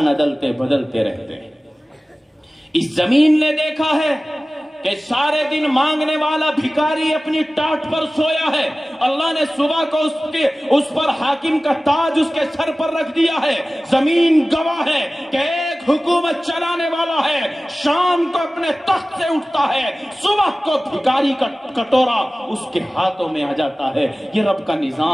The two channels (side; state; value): both; normal; correlation 0.97